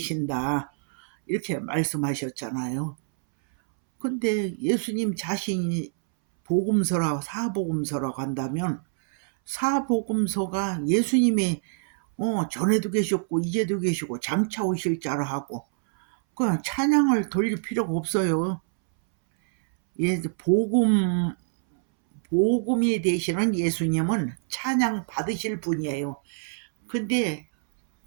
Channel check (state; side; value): silent; left; 61 dB below the other